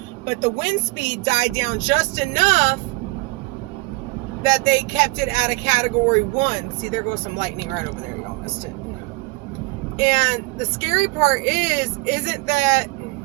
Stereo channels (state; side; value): quieter; left; 25.7 dB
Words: but the wind speed died down just enough that they kept it at a Category 1. See, there goes some lightning right over there. Y'all missed it. And the scary part isn't that